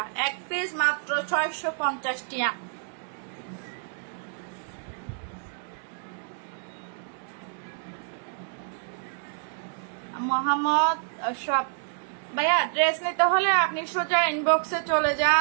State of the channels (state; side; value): silent; left; digital silence